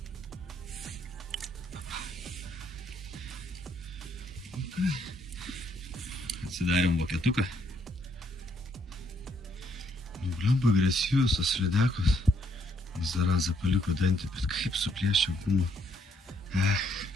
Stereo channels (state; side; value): normal; both; correlation 0.71